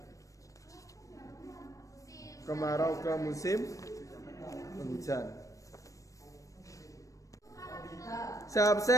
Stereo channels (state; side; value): late; right; 0.16 ms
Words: kemarau ke musim hujan. Saya